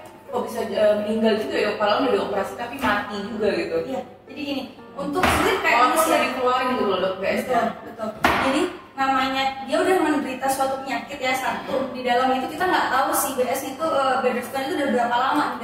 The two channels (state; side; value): identical; both; correlation 1.00